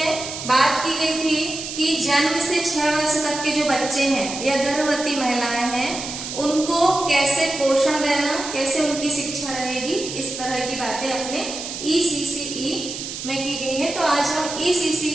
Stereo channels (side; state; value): right; noise; hiss, 8 dB below the sound